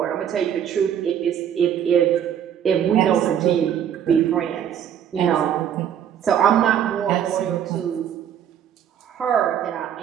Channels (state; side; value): quieter; left; 9.3 dB